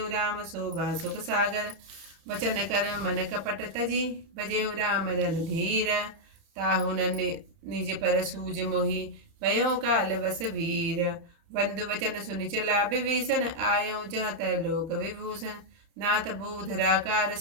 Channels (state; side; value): late; left; 30 ms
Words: राम शोभा सुख सागर। वचन कर मन कपट तजी, भजेउ राम रणधीर। ताहु न निज पर सूज मोहि, भयउ काल बस वीर। बंधु वचन सुनि चला विभीषण, आयउ जहाँ तय लोक विभूषण। नाथ भूधराकार